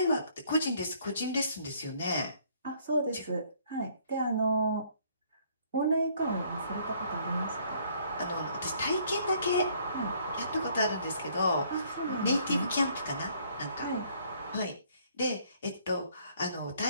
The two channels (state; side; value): inverted; both; correlation -0.63